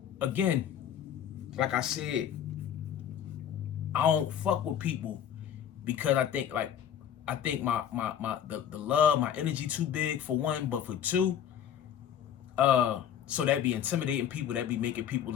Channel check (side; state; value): right; quieter; 9.4 dB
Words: again, like I said, I don't fuck with people because I think the love, my energy too big for one, but for two, so that'd be intimidating people, that'd be making people